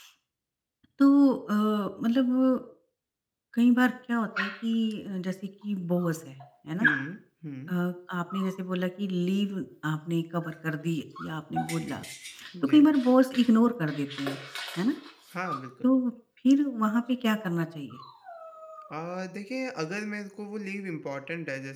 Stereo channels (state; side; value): identical; both; correlation 1.00